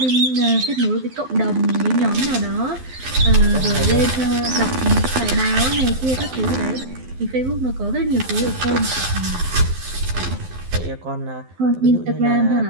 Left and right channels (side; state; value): left; late; 12 ms